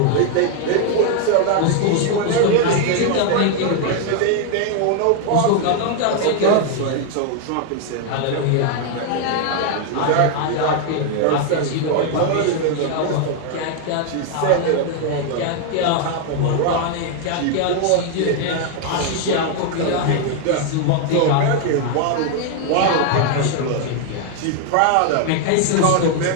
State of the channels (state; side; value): different; both; correlation 0.00